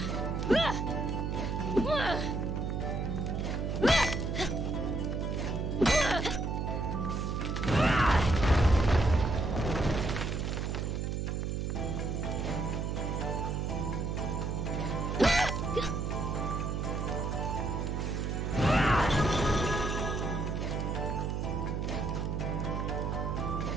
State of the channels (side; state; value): right; noise; hum, 1 dB below the sound